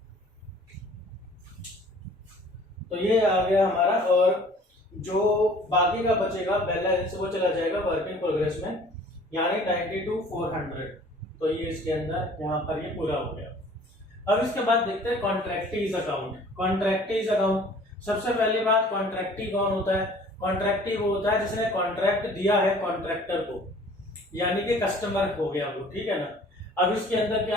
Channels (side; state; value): both; normal; correlation 0.51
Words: तो ये आ गया हमारा, और जो बाकी का बचेगा बैलेंस वो चला जाएगा वर्क इन प्रोग्रेस में, यानी 92,400। तो ये इसके अंदर यहाँ पर ये पूरा हो गया। अब इसके बाद देखते हैं कॉन्ट्रैक्टीज अकाउंट। कॉन्ट्रैक्टीज अकाउंट, सबसे पहली बात कॉन्ट्रैक्टी कौन होता है। कॉन्ट्रैक्टी वो होता है जिसने कॉन्ट्रैक्ट दिया है कॉन्ट्रैक्टर को, यानी कि कस्टमर हो गया वो, ठीक है ना। अब इसके अंदर